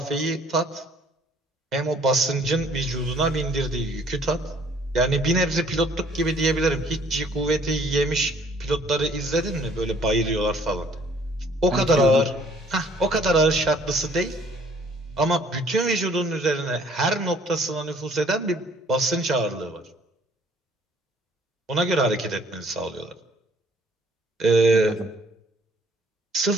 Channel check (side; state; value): both; normal; correlation 0.59